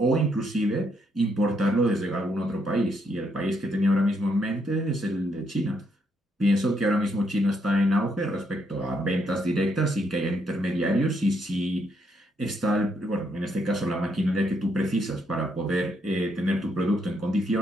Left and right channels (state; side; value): normal; both; correlation 0.75